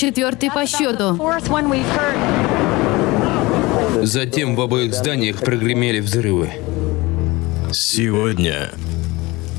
по счету. Затем в обоих зданиях прогремели взрывы. Сегодня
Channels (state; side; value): quieter; right; 22.1 dB